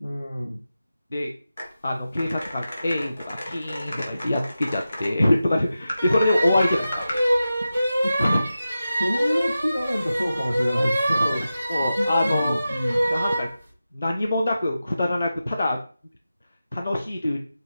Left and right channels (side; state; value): both; inverted; correlation -0.93